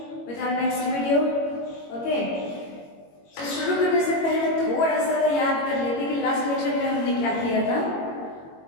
with our next video. Okay. तो शुरू करने से पहले थोड़ा सा याद कर लेते हैं कि लास्ट लेक्चर में हमने क्या किया था,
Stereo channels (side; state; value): right; late; 21 ms